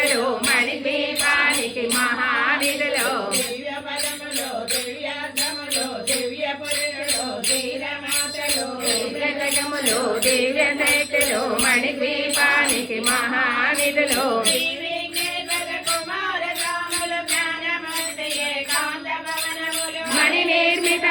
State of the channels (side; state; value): both; identical; correlation 1.00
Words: మణిద్వీపానికి మహానిధులు దివ్య పదములు దివ్యార్థములు దివ్య పురుషులు ధీరమాతలు దివ్యజగములు దివ్య శక్తులు మణిద్వీపానికి మహానిధులు మణి